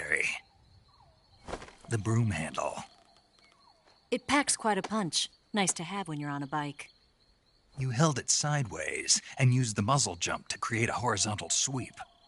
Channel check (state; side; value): identical; both; correlation 1.00